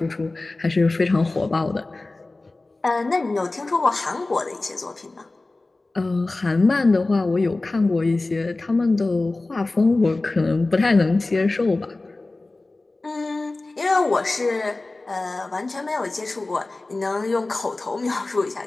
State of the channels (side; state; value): right; quieter; 3.1 dB